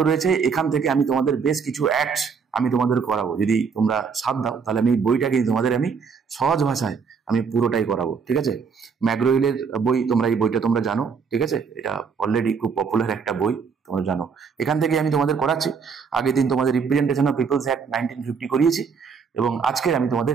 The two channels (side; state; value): left; quieter; 5.9 dB